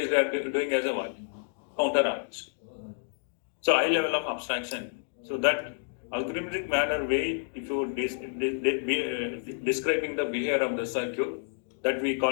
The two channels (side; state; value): right; silent; 58 dB below the other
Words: doing as a what? Counter arranged. So high level of abstraction. So that algorithmic manner way, if you describing the behavior of the circuit, that we